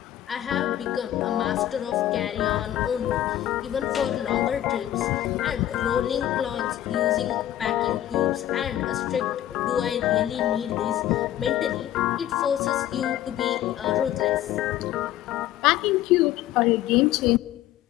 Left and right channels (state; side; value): quieter; right; 12.7 dB